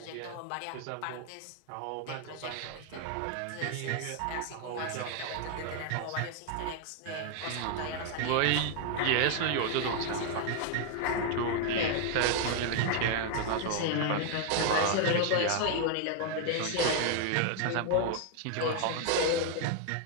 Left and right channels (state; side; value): different; both; correlation 0.00